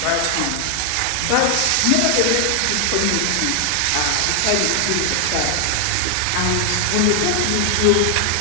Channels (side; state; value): both; different; correlation 0.00